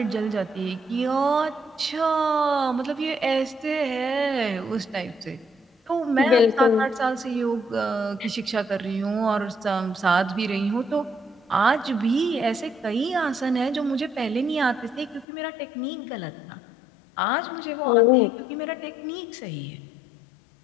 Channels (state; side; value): drops out; right; at 15.2 s